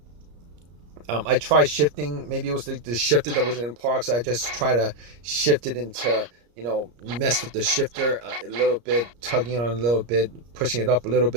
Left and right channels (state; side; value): late; left; 34 ms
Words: I tried shifting. Maybe it was the shifter that wasn't in park, so I just try to shift it into, mess with the shifter a little bit, tugging on it a little bit, pushing it up a little